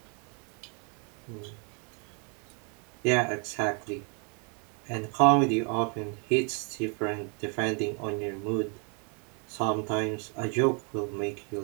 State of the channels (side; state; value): left; quieter; 37.0 dB